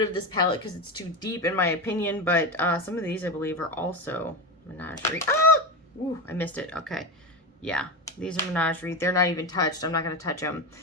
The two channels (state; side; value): normal; both; correlation 0.18